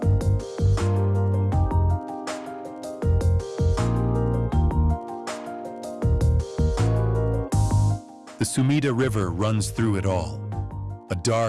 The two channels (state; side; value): identical; both; correlation 1.00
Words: The Sumida River runs through it all, a